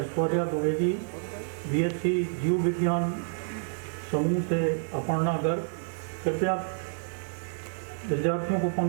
द्विवेदी, BSc जीव विज्ञान समूह से अपर्णा गर्ग। कृपया विद्यार्थियों को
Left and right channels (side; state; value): left; silent; digital silence